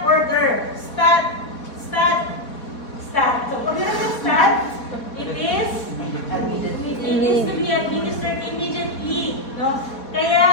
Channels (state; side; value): late; right; 4.2 ms